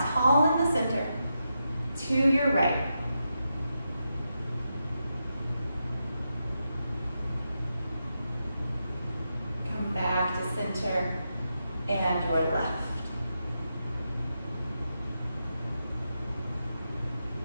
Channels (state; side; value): inverted; both; correlation -0.86